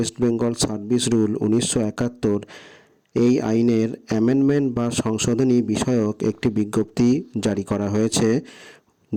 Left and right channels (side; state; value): both; identical; correlation 1.00